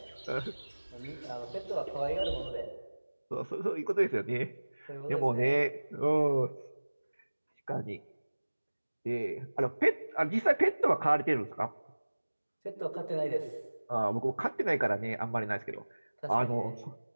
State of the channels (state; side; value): inverted; both; correlation -1.00